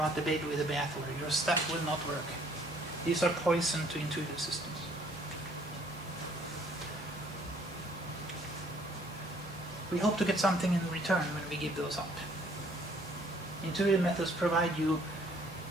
the baby with the bathwater. Your stuff will not work. These are poison to intuitive systems. We hope to get something in return when we give those up. Intuitive methods provide you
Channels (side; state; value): both; normal; correlation 0.61